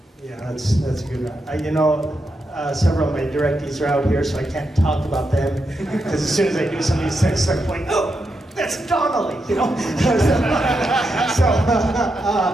Yeah, that's a good one. Several of my directees are out here, so I can't talk about them, because as soon as I do some of these things, I'm like, oh, that's Donnelly, you know?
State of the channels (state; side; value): normal; both; correlation 0.85